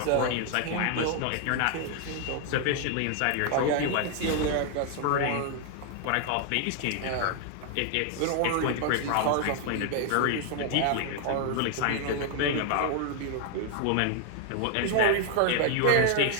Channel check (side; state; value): both; different; correlation 0.00